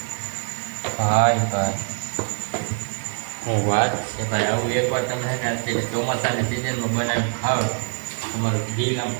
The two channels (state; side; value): silent; left; 63 dB below the other